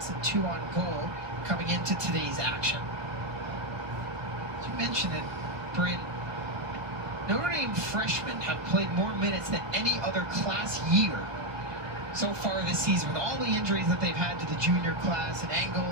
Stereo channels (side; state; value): left; late; 1.6 ms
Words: and 2 on goal coming into today's action. As you mentioned it, Bryn, Notre Dame freshmen have played more minutes than any other class year so far this season, with all the injuries that they've had to the junior class, and Engel